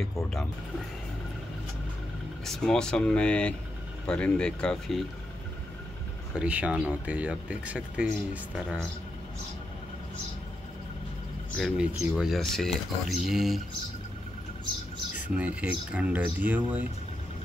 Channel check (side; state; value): both; normal; correlation 0.84